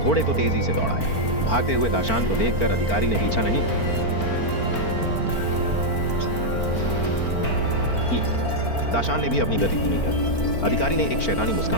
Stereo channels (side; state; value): right; late; 4.4 ms